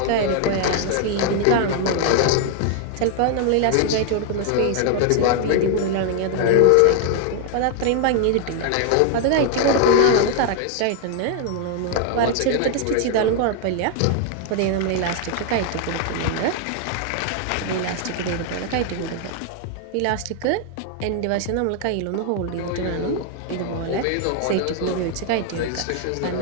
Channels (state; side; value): different; both; correlation 0.00